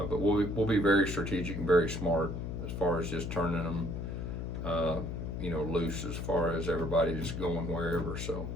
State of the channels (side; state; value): left; noise; hum, 4 dB below the sound